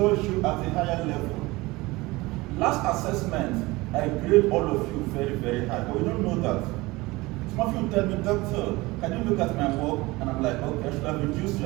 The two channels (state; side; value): quieter; left; 21.5 dB